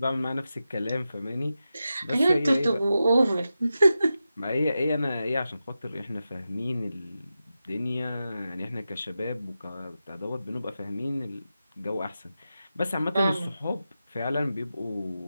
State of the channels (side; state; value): both; inverted; correlation -0.91